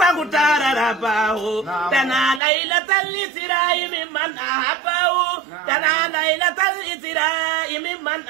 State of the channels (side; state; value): left; drops out; at 2.4 s